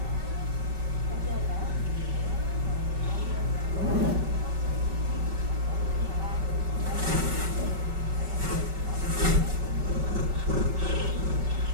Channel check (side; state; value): left; late; 5.3 ms